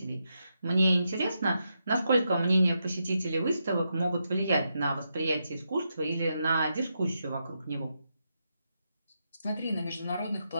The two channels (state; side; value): inverted; both; correlation -0.84